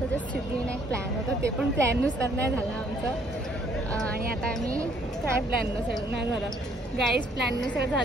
जे सिद्धिविनायक प्लॅन होतं ते पण प्लॅननुसार नाही झालं आमचं. आणि आता आम्ही काय प्लॅननुसार नाही झालं गाईज. प्लॅननुसार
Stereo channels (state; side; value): normal; both; correlation 0.64